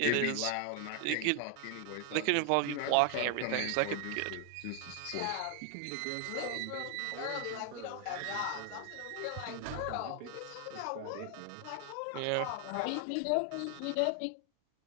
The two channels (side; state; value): both; different; correlation 0.00